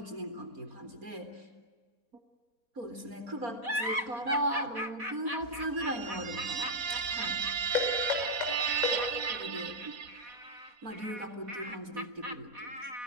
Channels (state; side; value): late; left; 4.1 ms